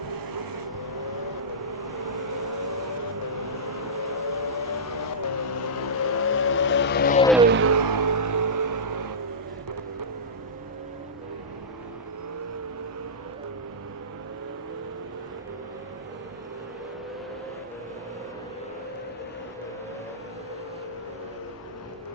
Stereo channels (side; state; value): both; normal; correlation -0.15